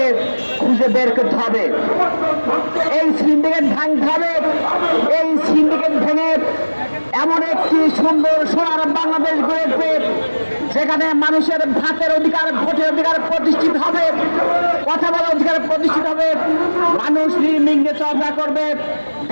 খুঁজে বের করতে হবে। এই সিন্ডিকেট ভাঙতে হবে। এই সিন্ডিকেট ভেঙে এমন একটি সুন্দর সোনার বাংলাদেশ গড়ে উঠবে যেখানে মানুষের ভাতের অধিকার, ভোটের অধিকার প্রতিষ্ঠিত হবে, কথা বলার অধিকার প্রতিষ্ঠিত হবে, মানুষ নির্বিঘ্নে চলাফেরা করবে,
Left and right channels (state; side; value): inverted; both; correlation -1.00